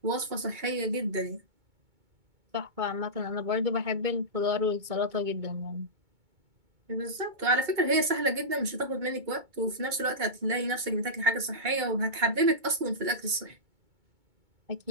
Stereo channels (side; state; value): left; late; 2.2 ms